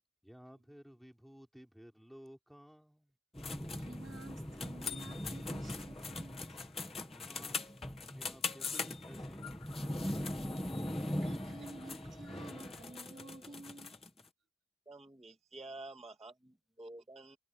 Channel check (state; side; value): normal; both; correlation 0.86